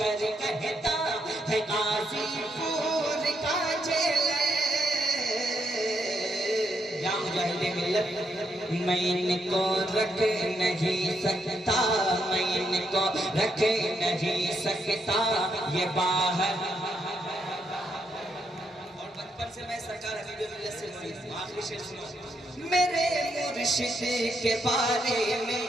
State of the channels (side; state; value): both; normal; correlation 0.78